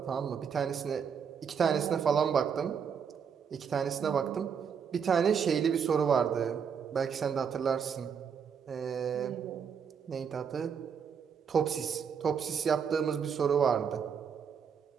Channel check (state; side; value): quieter; left; 7.0 dB